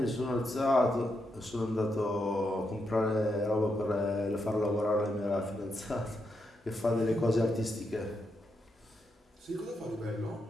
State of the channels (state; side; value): normal; both; correlation 0.82